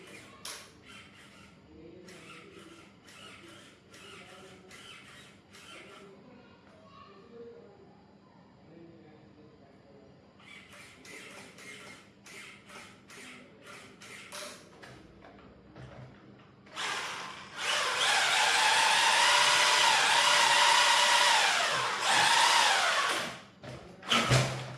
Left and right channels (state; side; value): identical; both; correlation 1.00